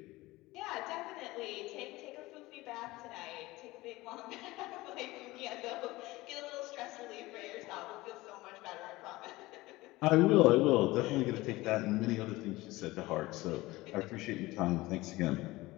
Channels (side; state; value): right; quieter; 19.6 dB